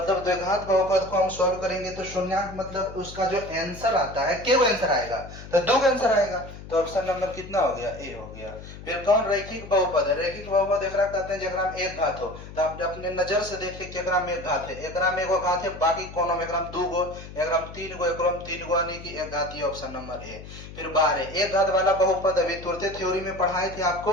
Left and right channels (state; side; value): noise; left; hum, 14 dB below the sound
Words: द्विघात बहुपद को हम सॉल्व करेंगे तो शून्यांक मतलब उसका जो आंसर आता है, केवल आंसर आएगा, तो 2 का आंसर आएगा, तो ऑप्शन नंबर कितना हो गया, ए हो गया। फिर कौन रैखिक बहुपद है, रैखिक बहुपद एकरा कहते हैं जेकरा में एक घात हो, तो आप अपने नजर से देखिए केकरा में एक घात है, एकरा में एगो घात है, बाकी कोनो में एकरा में 2 गो, एकरा में 3 गो, एकरा में 3 गो, यानी कि एक घाती, ऑप्शन नंबर ए। फिर 12 एक घात वाला बहुपद अभी तुरंत थ्योरी में पढ़ाए थे आपको,